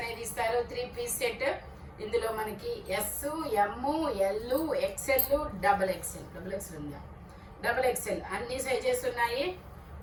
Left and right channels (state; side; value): identical; both; correlation 1.00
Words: ఇస్తారు. 3 పీస్ సెట్. ఇందులో మనకి S, M, L, XL, double XL ఉందా, డబల్ ఎక్స్ఎల్ అన్ని సైజెస్ ఉన్నాయి.